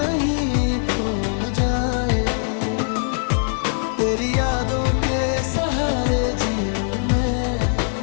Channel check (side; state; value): right; silent; digital silence